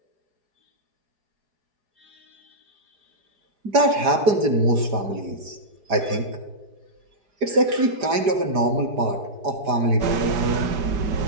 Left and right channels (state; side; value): late; left; 4.9 ms